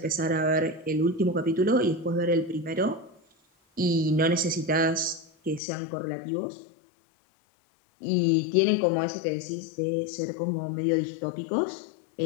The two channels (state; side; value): drops out; right; at 5.6 s